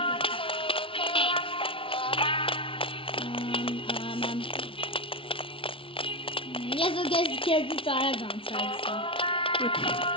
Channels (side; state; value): right; late; 0.25 ms